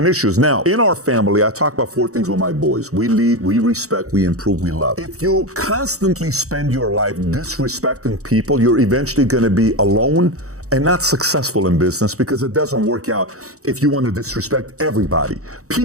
issues. Now, in our family, I talk about 4 things with my boys. We lead, we respect, we improve, we love. If you constantly spend your life disrespecting people, you're eventually going to be alone and not successful in business, because it doesn't work out if you want to disrespect everybody.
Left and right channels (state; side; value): late; left; 0.65 ms